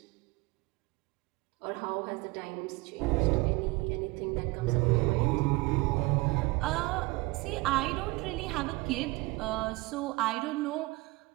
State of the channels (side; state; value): left; quieter; 23.2 dB